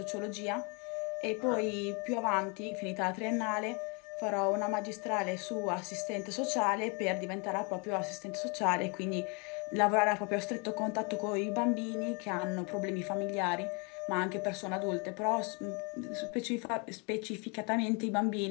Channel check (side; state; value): right; quieter; 32.5 dB